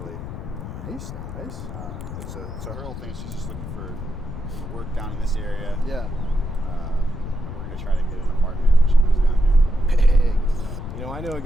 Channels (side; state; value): left; noise; rumble, 9 dB below the sound